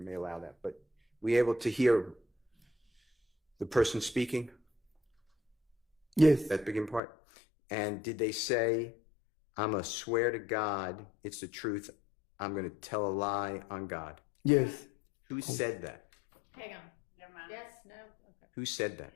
may allow that. But were you able to hear the person speaking? Yes. That beginning part? And did they say, I'm a swear to God, it's the truth, I'm going to tell a lie on God? Yes. Who said that? Hang on. Never mind. Yes, no, okay. Who said that?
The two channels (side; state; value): right; drops out; at 7.0 s